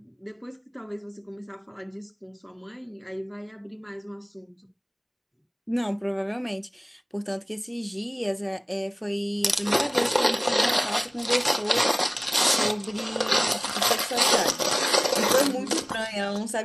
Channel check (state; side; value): identical; both; correlation 1.00